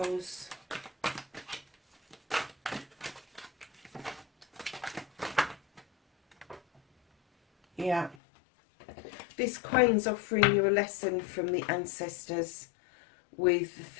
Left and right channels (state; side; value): drops out; right; at 8.2 s